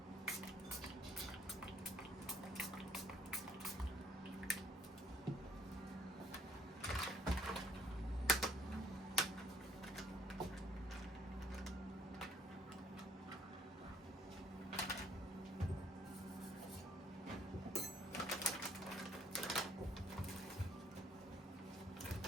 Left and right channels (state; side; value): normal; both; correlation 0.61